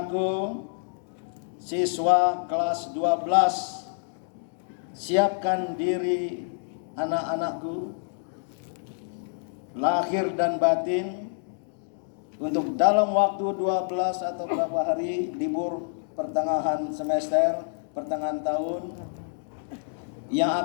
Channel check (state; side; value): silent; right; digital silence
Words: siswa kelas 12, siapkan diri anak-anakku, lahir dan batin, untuk dalam waktu 12 atau beberapa hari libur pertengahan semester, pertengahan tahun, yang